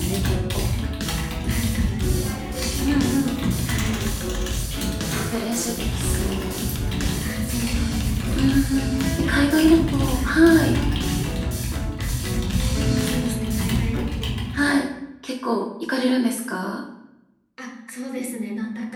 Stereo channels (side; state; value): both; identical; correlation 1.00